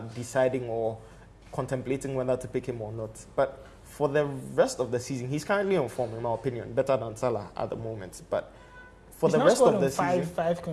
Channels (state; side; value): identical; both; correlation 1.00